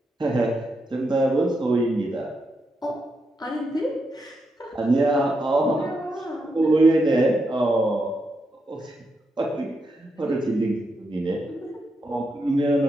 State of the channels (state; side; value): normal; both; correlation 0.83